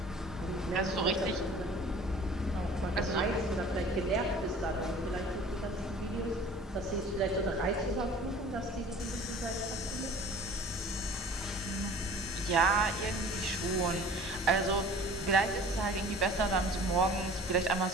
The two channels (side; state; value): both; normal; correlation 0.46